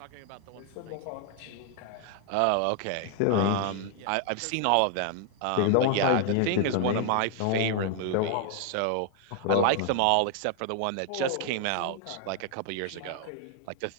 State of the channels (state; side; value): different; both; correlation 0.00